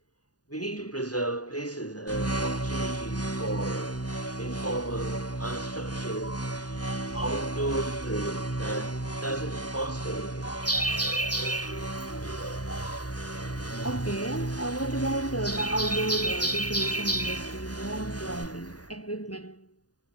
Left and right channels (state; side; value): late; right; 0.68 ms